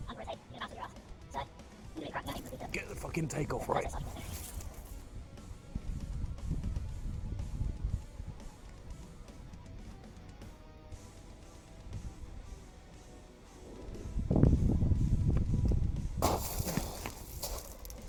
under-rotate, you're going to bounce on your ass. So, you're really cracking that with Get the fucking takeoff right.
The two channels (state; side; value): identical; both; correlation 1.00